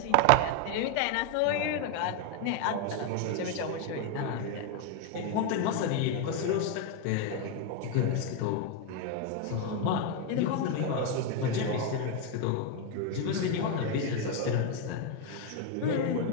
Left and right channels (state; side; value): different; both; correlation 0.01